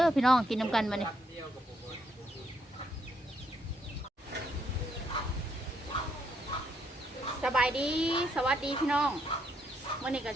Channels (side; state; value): both; normal; correlation 0.74